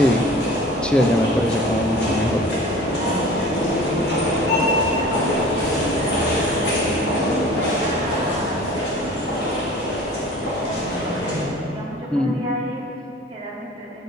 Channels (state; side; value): normal; both; correlation 0.44